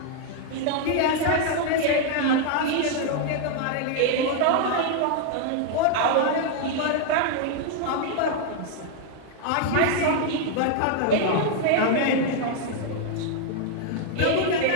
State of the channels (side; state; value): both; different; correlation 0.00